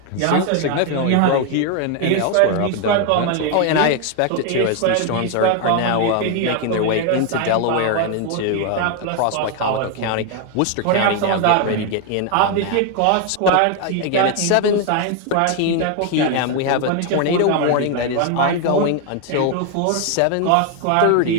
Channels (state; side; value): different; both; correlation 0.01